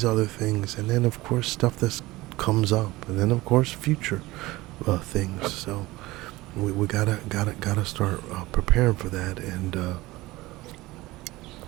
other things. And then, of course, stuff that comes up. And then, of course, future things. So we gotta start preparing for that. And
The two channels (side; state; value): left; quieter; 19.5 dB